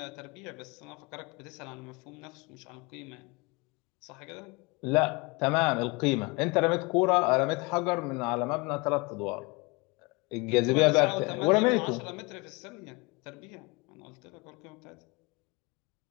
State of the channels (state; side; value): quieter; right; 26.9 dB